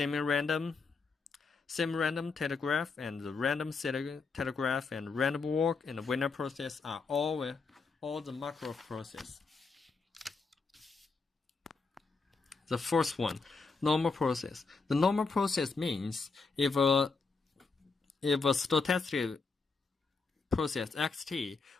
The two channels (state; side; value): quieter; right; 4.4 dB